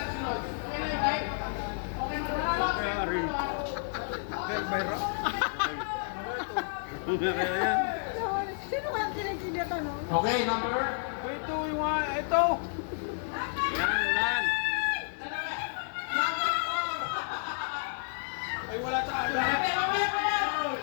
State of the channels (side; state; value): right; silent; digital silence